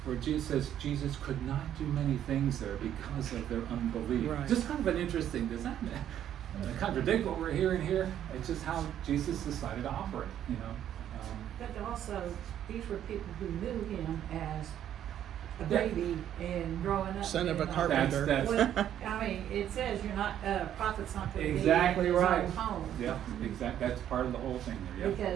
where Jesus says Jesus could not do many things there because of their unbelief. Right. Just kind of an interesting, does that contradict what we're hearing here? It's just how Jesus decided to operate, But also, these were people who knew him as a baby and growing up. Son of a carpenter. It says you're not, prophet's not going to be Exactly in his right. own home. Yeah, exactly. That's part of the whole thing there. Yeah.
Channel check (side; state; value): left; quieter; 10.6 dB